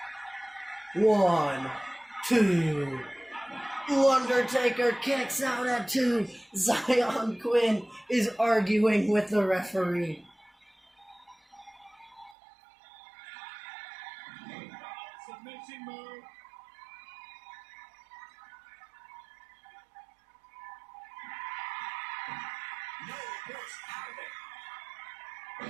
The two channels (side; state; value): left; drops out; at 12.4 s